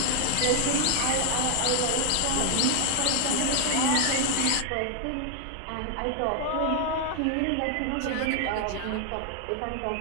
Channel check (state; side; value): different; both; correlation 0.00